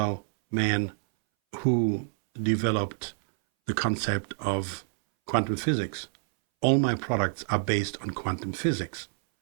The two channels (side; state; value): left; silent; 60 dB below the other